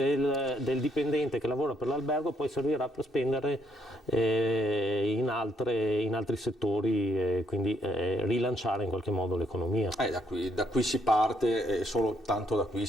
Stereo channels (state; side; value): normal; both; correlation 0.72